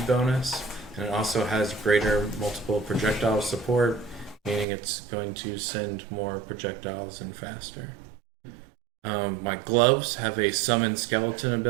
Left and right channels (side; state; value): left; drops out; at 4.7 s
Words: bonus, and it also has greater multiple projectile support, meaning it's going to send more projectiles and faster. My gloves have a summon skeleton